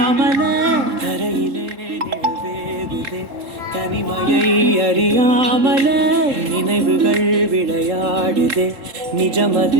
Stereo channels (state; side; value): late; left; 3.7 ms